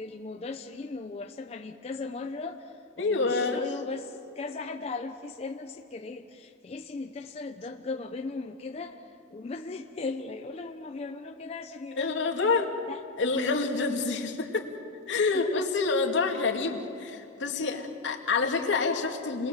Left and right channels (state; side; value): quieter; right; 3.6 dB